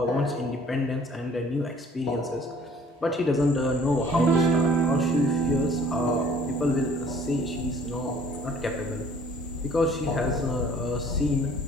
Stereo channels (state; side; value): normal; both; correlation 0.54